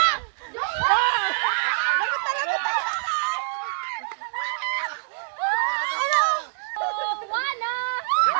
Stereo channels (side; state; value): left; silent; 61 dB below the other